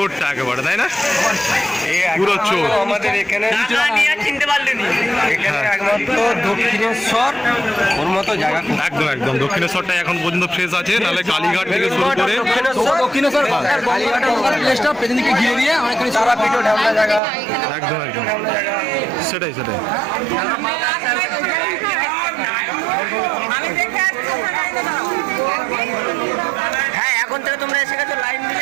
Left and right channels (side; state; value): left; drops out; at 17.2 s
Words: একেবারে, তাই না? পুরো চোর আমাদের এখানে চিনতে পারলেন এখানে একমাত্র দক্ষিণেশ্বর ওর মতো জায়গা। একদম একদম দক্ষিণেশ্বরটা এখন পর্যন্ত ফ্রেশ আছে, নাহলে কালীঘাট থেকে শুরু করে দক্ষিণেশ্বর কালীঘাটের পেছনদিকে ঘিরে দিয়ে অনেকখানি সারা পিঠো ঢামনা জায়গা। একদম একদম সেটাই সেটাই। হ্যাঁ, এখন থেকে তোমরা এসে গেছো লাইন